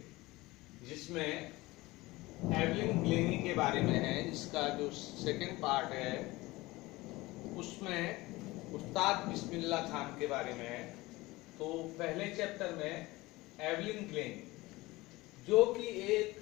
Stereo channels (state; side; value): quieter; right; 20.5 dB